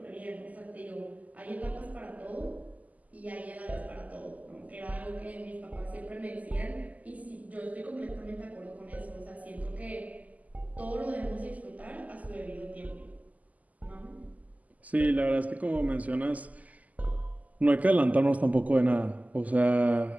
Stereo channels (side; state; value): left; late; 0.076 ms